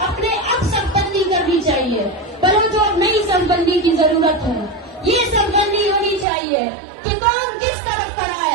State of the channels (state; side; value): drops out; left; at 6.2 s